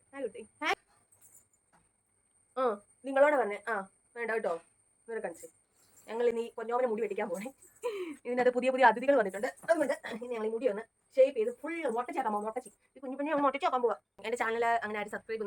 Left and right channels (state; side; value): identical; both; correlation 1.00